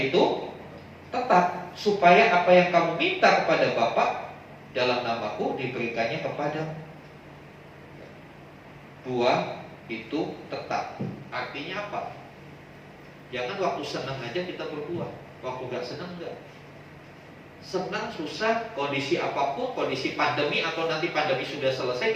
itu tetap, supaya apa yang kamu minta kepada Bapa dalam namaku diberikannya kepadamu. Buah itu tetap. Artinya apa? Jangan waktu senang aja kita berbuah, waktu gak senang enggak. Senang, susah, kondisi apapun, kondisi pandemi atau nanti pandemi sudah selesai,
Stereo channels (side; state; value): both; identical; correlation 1.00